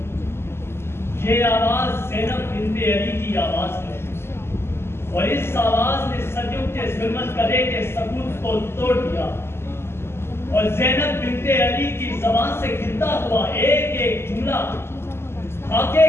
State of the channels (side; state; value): right; late; 0.12 ms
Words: یہ آواز زینب بنت علی کی آواز ہے، اور اس آواز نے صدیوں کے ظلمت کرے کے ثبوت کو توڑ دیا، اور زینب بنت علی کی زبان سے گرتا ہوا ایک ایک جملہ خاکے